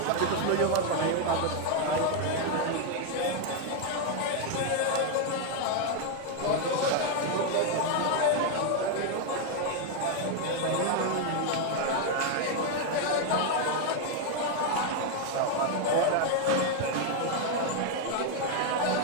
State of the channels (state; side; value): different; both; correlation 0.01